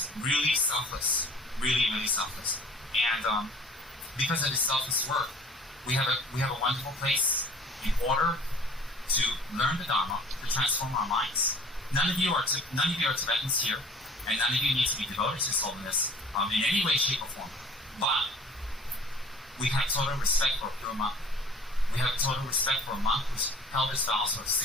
really selfless, really, really selfless. And because of his selfless work, we have a wonderful place in order to learn the Dharma, to transform our minds. None of you are Tibetans here, and none of you need to be devoted to His Holiness in any way, shape, or form. But we have total respect for a pure monk. We have total respect for a monk who's held his vows for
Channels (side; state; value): both; normal; correlation 0.48